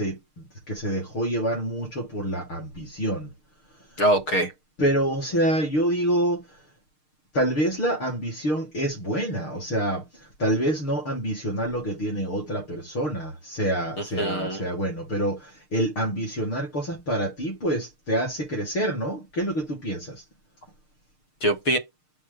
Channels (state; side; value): late; right; 6.6 ms